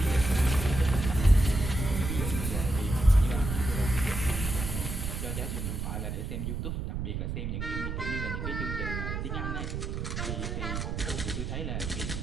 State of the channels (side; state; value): right; noise; rumble, 3 dB below the sound